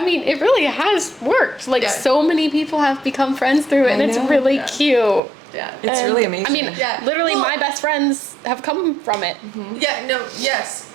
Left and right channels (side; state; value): left; drops out; at 5.2 s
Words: mean, it really has worked. Like, so many people have become friends through it, and it's really cute. It's really amazing. I mean, literally, my best friends have come from it.